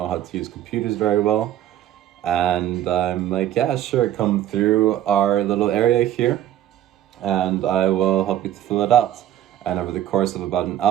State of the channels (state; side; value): quieter; left; 12.0 dB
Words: how to use computers very well." And I'm like, "Yeah, sure. Come through our little area here and I will help you to fill it out." And over the course of about an